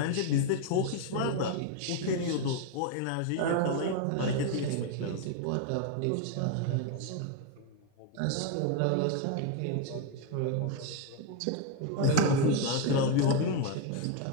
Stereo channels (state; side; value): different; both; correlation 0.01